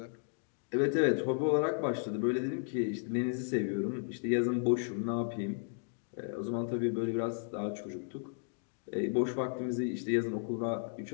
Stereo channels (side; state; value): right; silent; digital silence